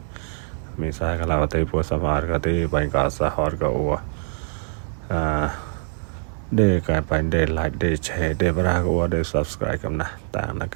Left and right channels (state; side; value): silent; left; 63 dB below the other